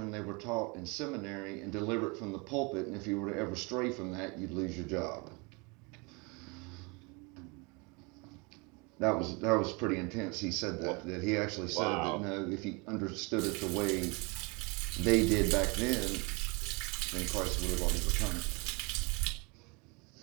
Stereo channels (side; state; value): left; quieter; 29.5 dB